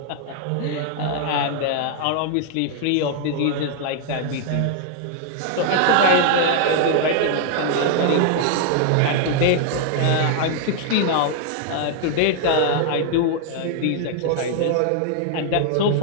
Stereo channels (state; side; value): different; both; correlation 0.00